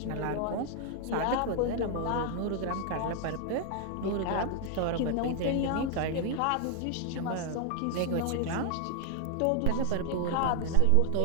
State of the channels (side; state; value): both; different; correlation 0.00